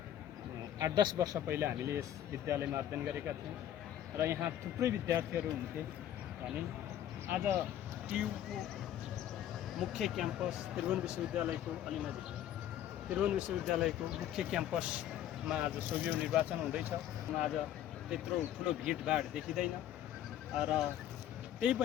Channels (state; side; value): quieter; right; 11.3 dB